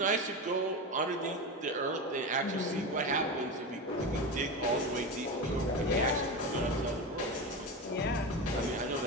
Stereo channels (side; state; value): both; normal; correlation 0.21